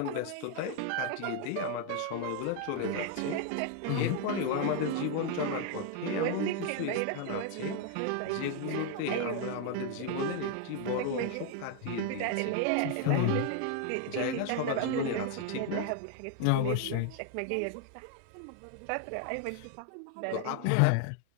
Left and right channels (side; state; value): both; different; correlation 0.00